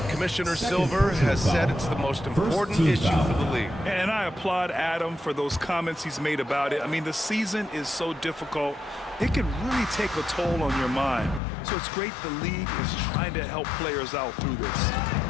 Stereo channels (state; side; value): drops out; right; at 11.4 s